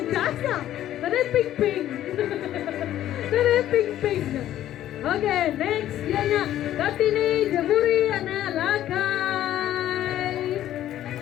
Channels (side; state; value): right; quieter; 12.4 dB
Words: Tadi ping-ping. Oke, next dia Kartini Jaburi anak Lakai.